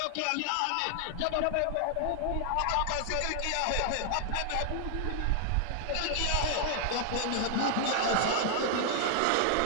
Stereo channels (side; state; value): both; different; correlation 0.00